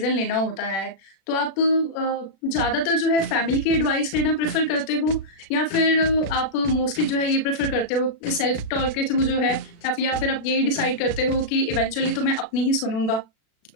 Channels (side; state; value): right; late; 36 ms